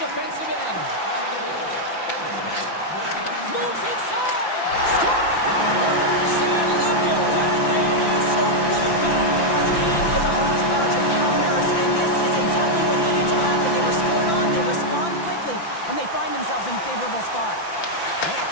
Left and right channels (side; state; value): right; late; 5.9 ms